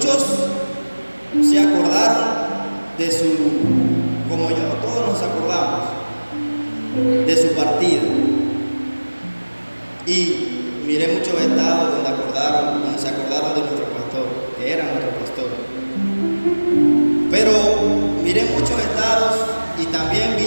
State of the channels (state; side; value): inverted; both; correlation -1.00